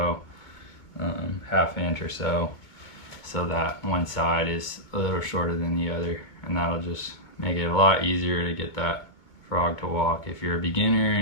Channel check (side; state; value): right; late; 2.2 ms